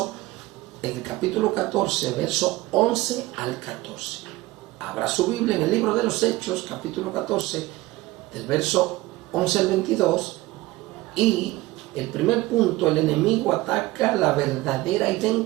el capítulo 14, verso 11 al 14. Abra su Biblia en el libro de los Hechos, capítulo 14, del verso 11 al 22. Y el primer punto: el enemigo ataca la verdadera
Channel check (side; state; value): left; quieter; 18.9 dB